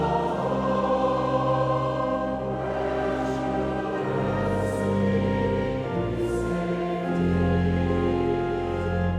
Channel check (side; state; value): both; identical; correlation 1.00